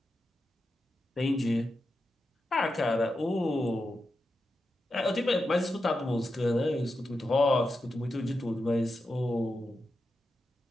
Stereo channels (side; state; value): both; normal; correlation 0.89